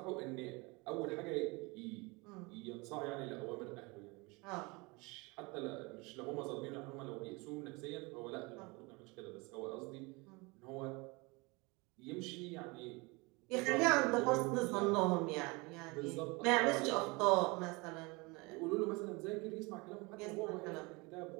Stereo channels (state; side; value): quieter; left; 26.3 dB